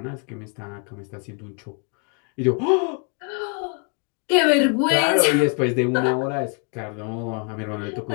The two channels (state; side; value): quieter; right; 37.0 dB